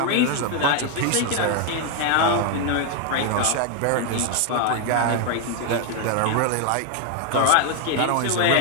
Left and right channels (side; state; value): both; different; correlation 0.00